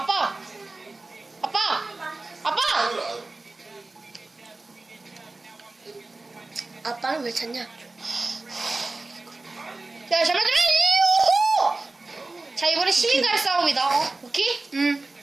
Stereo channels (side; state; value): left; quieter; 3.2 dB